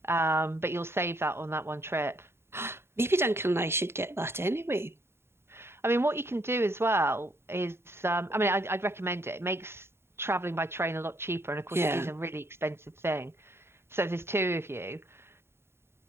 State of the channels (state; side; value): late; left; 0.12 ms